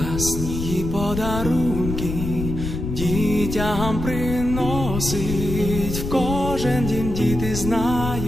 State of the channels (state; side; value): noise; left; rumble, 5 dB below the sound